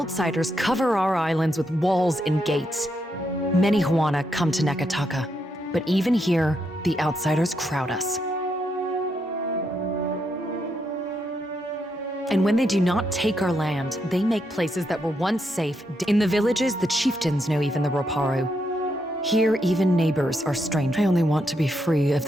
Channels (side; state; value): both; normal; correlation 0.80